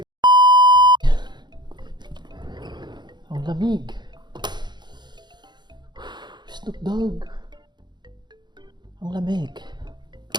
Ang lamig. Snoop Dogg. Ang lamig.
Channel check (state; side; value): late; left; 0.21 ms